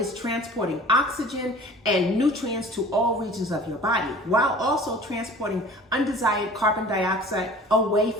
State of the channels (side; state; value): both; normal; correlation 0.45